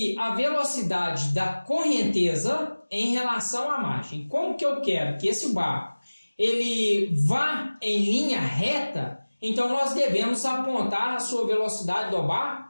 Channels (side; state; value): both; inverted; correlation -1.00